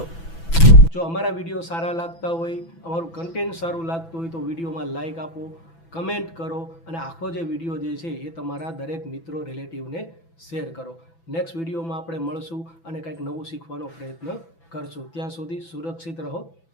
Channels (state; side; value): late; right; 6.0 ms